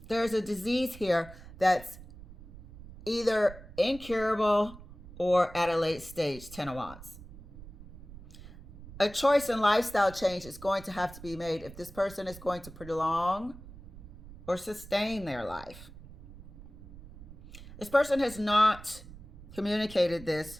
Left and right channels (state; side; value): noise; right; rumble, 17 dB below the sound